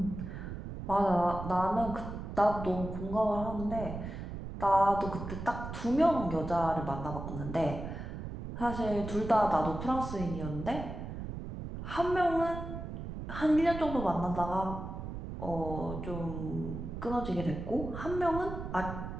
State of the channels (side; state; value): right; noise; rumble, 7 dB below the sound